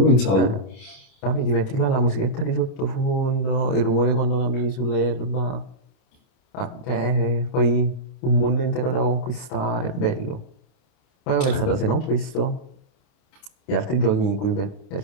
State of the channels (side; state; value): right; late; 30 ms